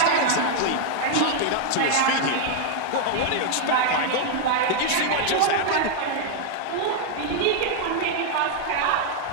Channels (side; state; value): both; different; correlation 0.00